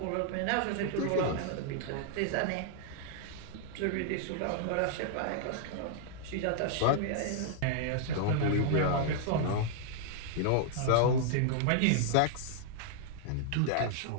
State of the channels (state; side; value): different; both; correlation -0.01